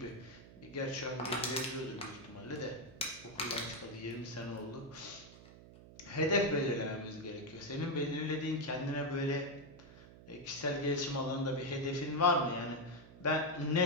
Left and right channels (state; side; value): noise; right; hum, 18 dB below the sound